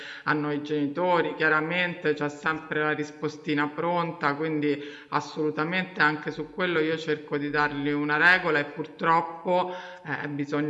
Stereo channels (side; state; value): both; identical; correlation 1.00